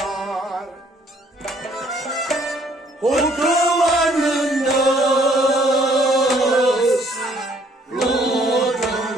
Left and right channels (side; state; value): both; normal; correlation 0.63